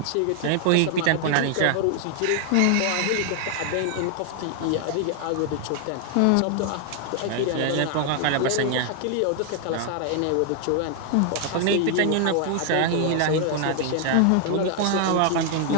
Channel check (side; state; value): both; different; correlation 0.00